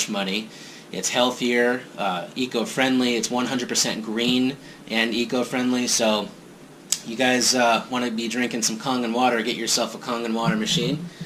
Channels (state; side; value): identical; both; correlation 1.00